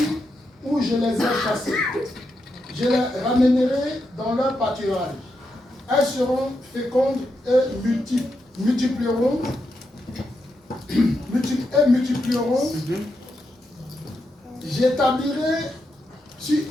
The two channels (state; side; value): normal; both; correlation 0.84